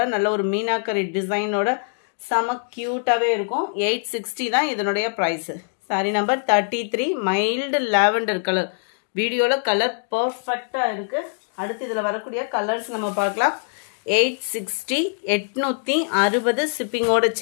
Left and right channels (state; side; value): silent; right; digital silence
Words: நல்ல ஒரு மீனாக்கரி டிசைனோட செம க்யூட்டாகவே இருக்கும். 860 தான் இதனுடைய price. Sari number 33 mild lavender colour. வீடியோவில் கலர் பர்ஃபெக்டாக இருக்குது. அடுத்து இதில் வரக்கூடிய கலர்ஸ் நம்ம பார்க்கலாம். 860 860 ஷிப்பிங்கோட